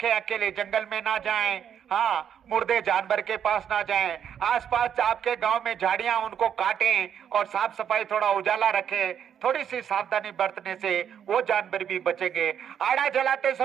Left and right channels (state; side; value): quieter; left; 8.7 dB